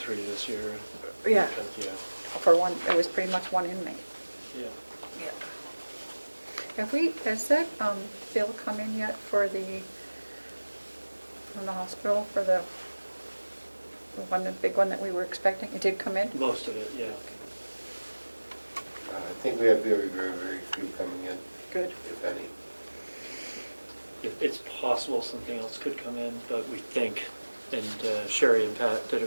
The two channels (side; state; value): both; inverted; correlation -1.00